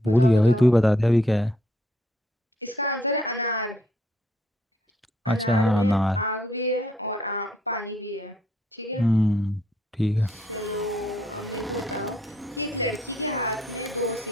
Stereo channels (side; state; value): both; normal; correlation 0.70